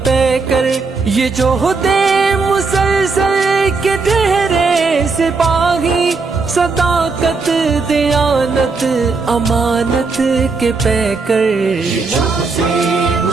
پیکر یہ جوہد مسلسل کے ٹھہرے سپاہی صداقت دیانت امانت کے پیکر یہ جو دے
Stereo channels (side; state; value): left; quieter; 4.3 dB